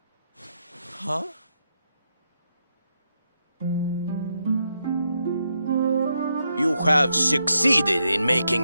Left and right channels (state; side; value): inverted; both; correlation -0.81